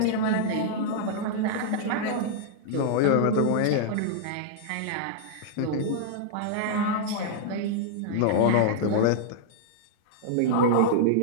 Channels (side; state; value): both; different; correlation -0.01